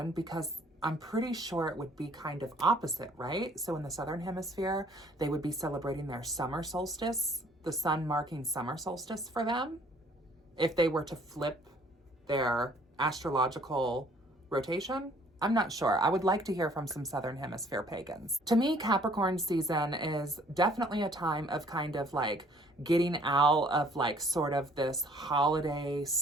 because I'm pretty sure it would be kind of opposite, right? So in the Southern Hemisphere, they would be celebrating their summer solstice, the sun marking summer solstice for them, if they were to flip their astrological rotation. I'm not sure. I would like to hear from some Southern Hemisphere pagans. To me, Capricorn season is definitely a time of kind of like getting out of like sort of this holiday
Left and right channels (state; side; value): normal; both; correlation 0.58